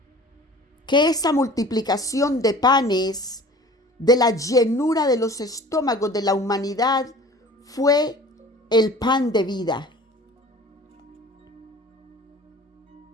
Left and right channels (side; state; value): both; normal; correlation 0.44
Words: que esa multiplicación de panes, de la llenura de los estómagos de la humanidad, fue el pan de vida.